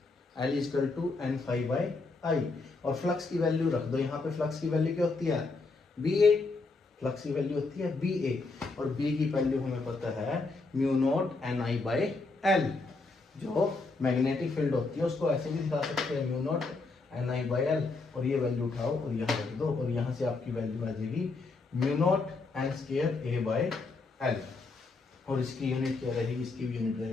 L is equal to N phi by I, और फ्लक्स की वैल्यू रख दो यहाँ पे। फ्लक्स की वैल्यू क्या होती है, बी ए, फ्लक्स की वैल्यू होती है बी ए, और बी की वैल्यू हमें पता है mu not an I by L. जो मैग्नेटिक फील्ड होती है उसको ऐसे भी दिखा सकते हैं, mu not an I by L, और ये वैल्यू उठाओ और यहाँ रख दो, और यहाँ से आपकी वैल्यू आ जाएगी mu not an square A by L, और इसकी यूनिट क्या रहेगी, इसकी भी यूनिट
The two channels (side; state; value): right; quieter; 3.7 dB